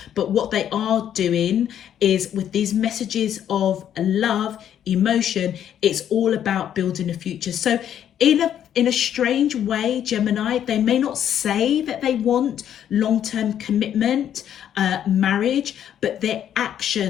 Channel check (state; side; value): quieter; right; 10.0 dB